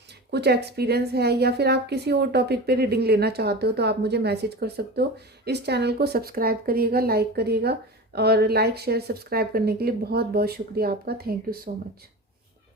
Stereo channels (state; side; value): normal; both; correlation 0.30